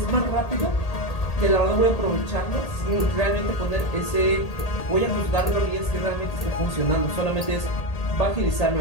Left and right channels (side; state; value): right; late; 1.8 ms